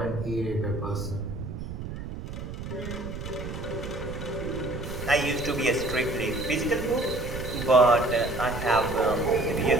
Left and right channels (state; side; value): noise; right; rumble, 8 dB below the sound